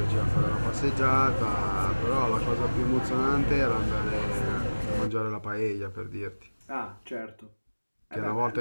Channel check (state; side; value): inverted; both; correlation -1.00